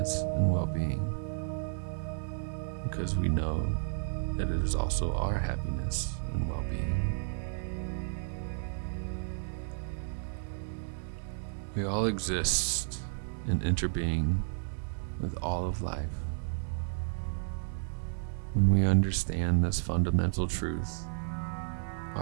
and well-being, because we know that it is also our happiness and well-being. We all exist in interbeing with all of life. When we understand this fundamental truth,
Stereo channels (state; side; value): silent; left; digital silence